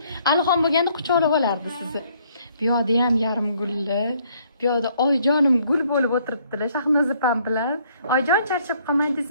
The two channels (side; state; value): both; inverted; correlation -0.65